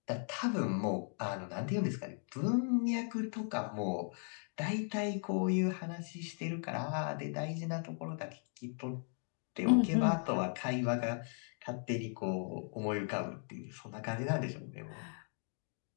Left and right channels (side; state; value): right; silent; 53 dB below the other